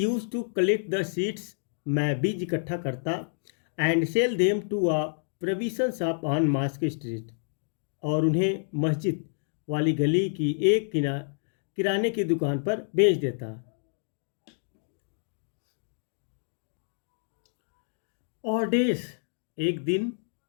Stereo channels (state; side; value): silent; right; digital silence